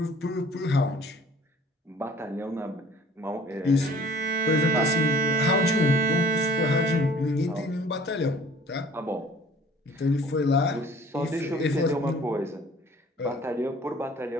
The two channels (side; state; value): both; normal; correlation 0.52